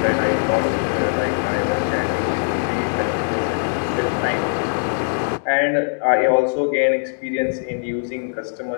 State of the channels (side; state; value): right; silent; digital silence